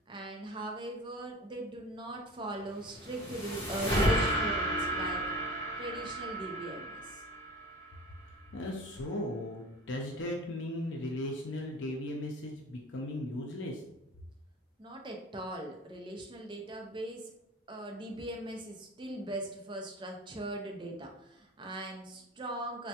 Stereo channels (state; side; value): normal; both; correlation 0.38